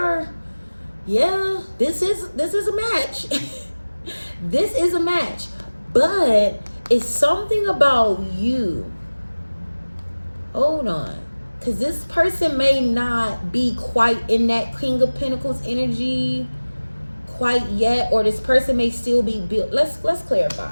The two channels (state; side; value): inverted; both; correlation -1.00